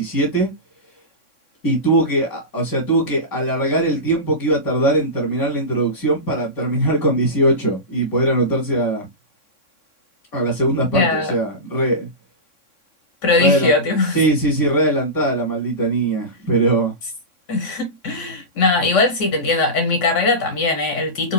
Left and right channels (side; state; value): right; late; 3.6 ms